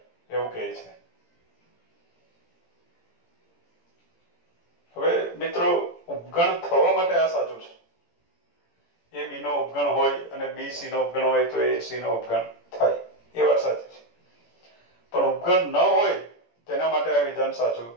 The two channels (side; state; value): right; late; 17 ms